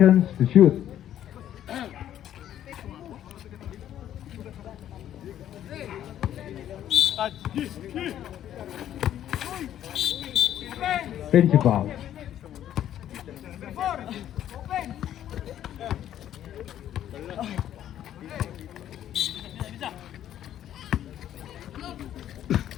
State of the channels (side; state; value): right; quieter; 11.2 dB